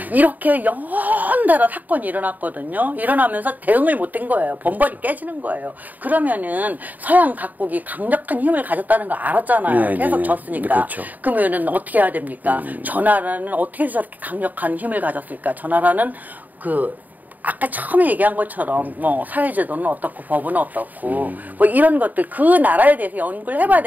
이렇게 연달아 사건이 일어났거든요. 일어나면서 대응을 못한 거예요. 번벌이 깨지는 거예요. 그러면은 서양 각국이 강력한 힘을 가졌다는 거 알았잖아요. 계속 졌으니까. 그러면은 어떻게 해야 됩니까? 저 나라는 어떻게 해서 저렇게 강력한 힘을 가졌을까? 저 나라는 아까 처음에 얘기한 것처럼 사회제도는 어떻고 법은 어떻고 뭐 이런 것들 그 나라에 대해서 연구를 해봐야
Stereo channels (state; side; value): late; left; 0.082 ms